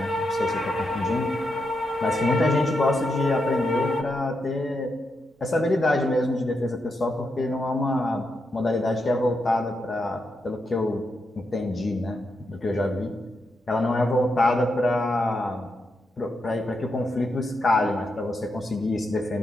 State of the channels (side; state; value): both; normal; correlation 0.84